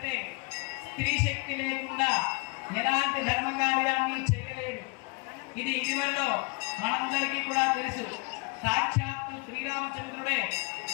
స్త్రీ శక్తి లేకుండా ఎలాంటి ధర్మకార్యాన్ని చేయలేడు. ఇది ఇటీవలలో మనందరికీ కూడా తెలుసు. సాక్షాత్తు శ్రీరామచంద్రుడే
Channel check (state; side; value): quieter; right; 29.7 dB